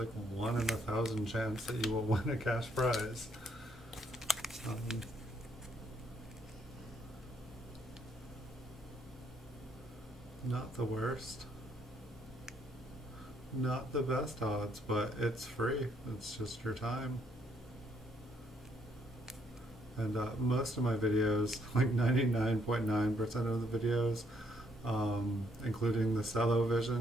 1 in 1,000 chance that you will win a cash prize. Not the worst. Not the best odds, but it's free. It's just your time. And most of my videos, like 99.9% of the videos, including the Cello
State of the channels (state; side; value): normal; both; correlation 0.71